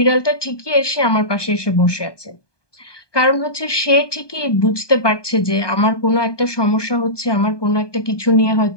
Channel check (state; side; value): late; right; 1.2 ms